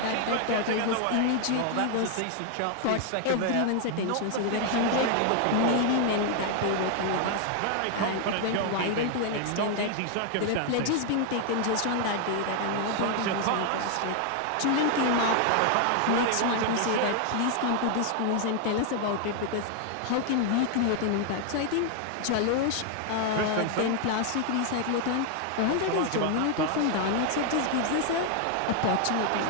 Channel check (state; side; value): different; both; correlation 0.00